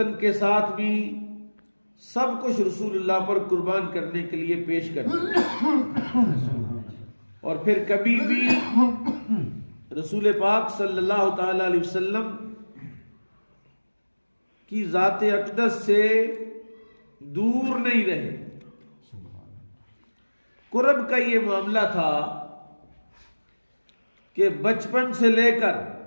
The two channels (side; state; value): both; inverted; correlation -1.00